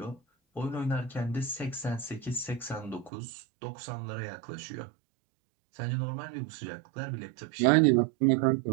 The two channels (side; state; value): left; drops out; at 3.1 s